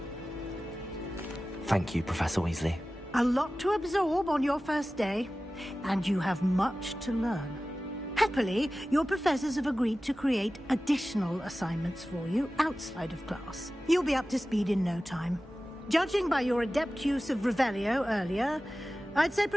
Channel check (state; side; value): normal; both; correlation 0.96